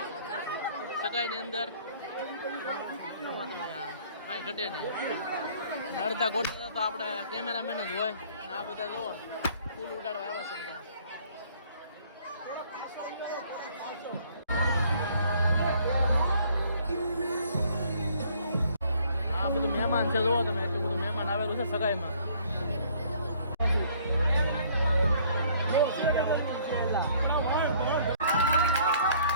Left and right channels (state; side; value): inverted; both; correlation -0.60